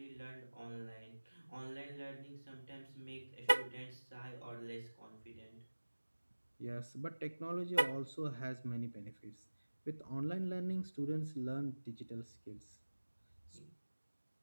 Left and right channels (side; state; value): both; inverted; correlation -1.00